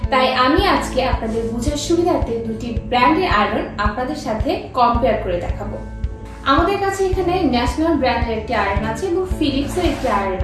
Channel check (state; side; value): identical; both; correlation 1.00